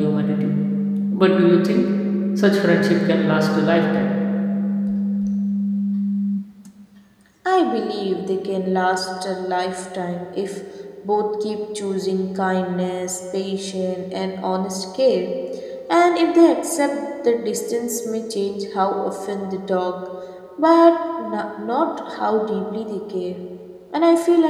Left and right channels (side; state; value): both; identical; correlation 1.00